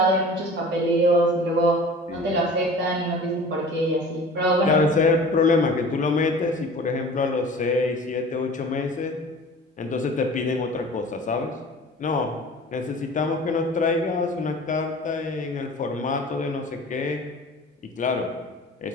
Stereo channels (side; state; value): both; normal; correlation 0.42